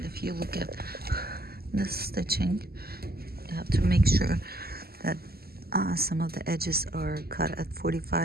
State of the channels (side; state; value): left; late; 0.45 ms